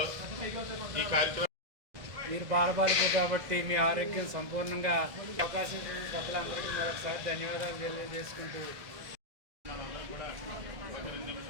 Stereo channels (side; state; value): left; late; 1.5 ms